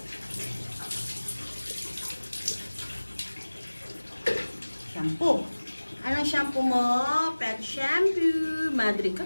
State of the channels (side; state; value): both; inverted; correlation -1.00